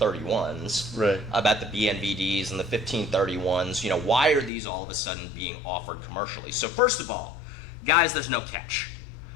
31s, right? About the BNVDs and the 1531s. Why are these all of a sudden being offered commercially? So first of all, guys, there's no catch.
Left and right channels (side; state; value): right; drops out; at 4.5 s